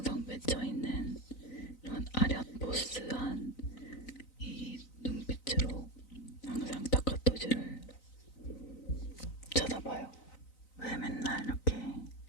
맺혀있는 이런 아련 보스한 이 눈빛으로 항상 타카토시를 쳐다봐요. 왜 맨날 이렇게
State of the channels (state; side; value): late; right; 3.9 ms